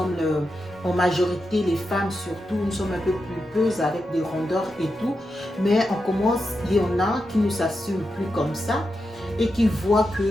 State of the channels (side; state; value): both; normal; correlation 0.88